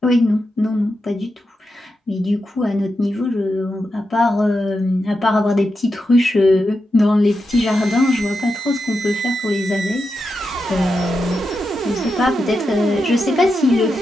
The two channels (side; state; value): both; normal; correlation 0.87